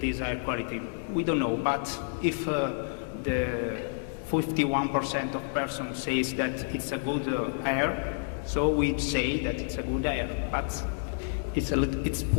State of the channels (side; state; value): right; silent; digital silence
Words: air quality? We don't know, but if the 51% of persons says that it's a good air, so we say that it's a good air, but it's